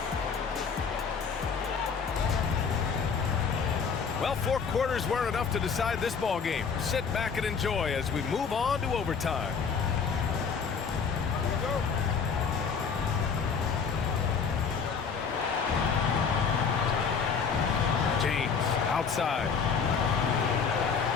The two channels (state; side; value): quieter; right; 5.9 dB